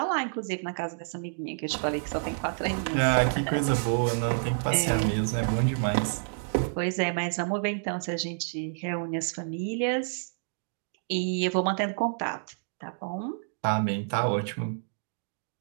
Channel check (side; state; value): left; silent; digital silence